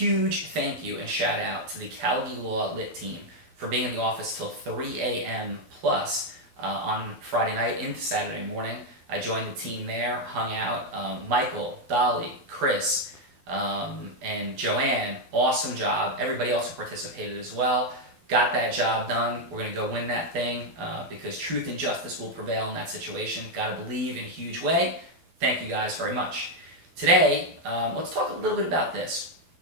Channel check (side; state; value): left; late; 12 ms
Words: thank you and shout out to the Callagy Law Lit team for being in the office till 3 a.m. plus on Friday night into Saturday morning. I joined the team there, hung out. Michael, Dolly, Chris, and Joanne, awesome job. Everybody else who participated as well. Got that job done. We're going to go win that thing because truth and justice will prevail in that situation. Got to believe in a huge way. Thank you guys very much. Today, let's talk a little bit about this.